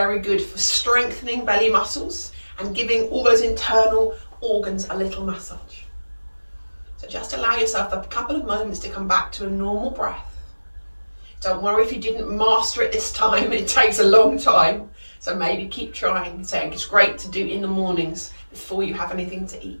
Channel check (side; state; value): both; inverted; correlation -1.00